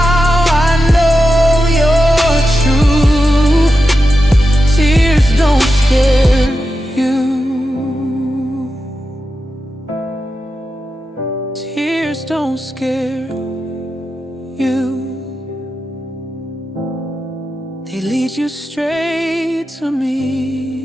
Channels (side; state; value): both; normal; correlation 0.90